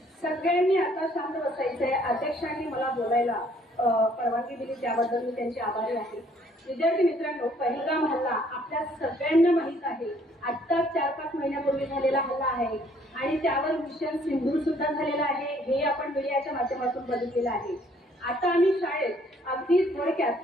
सगळ्यांनी आता शांत बसायचंय. अध्यक्षांनी मला बोलायला परवानगी दिली त्याबद्दल मी त्यांचे आभारी आहे. विद्यार्थी मित्रांनो, पहिलगाम हल्ला आपल्या सगळ्यांना माहित आहे. आता 4-5 महिन्यापूर्वी झालेला हल्ला आहे आणि त्यावर मिशन सिंदूर सुद्धा झालेला आहे. हे आपण मीडियाच्या माध्यमातून बघितलेलं आहे. आता आम्ही शाळेत अगदी थोडक्यात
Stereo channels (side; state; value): both; normal; correlation 0.62